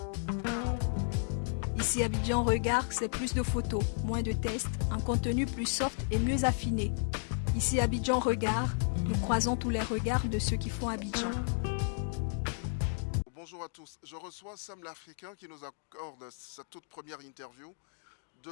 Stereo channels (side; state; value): right; silent; digital silence